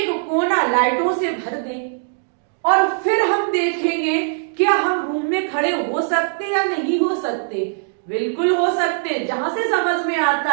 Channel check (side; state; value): left; silent; digital silence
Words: कोना लाइटों से भर दें, और फिर हम देखेंगे क्या हम रूम में खड़े हो सकते या नहीं हो सकते? बिल्कुल हो सकते। जहां से समझ में आता